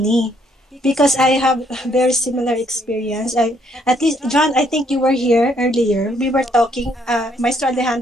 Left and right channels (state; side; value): normal; both; correlation 0.69